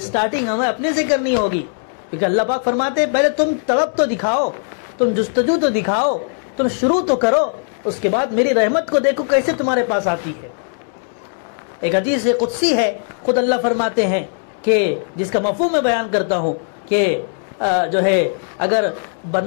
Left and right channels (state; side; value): silent; right; digital silence